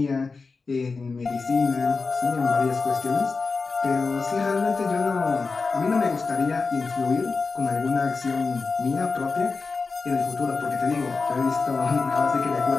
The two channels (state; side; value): quieter; right; 4.3 dB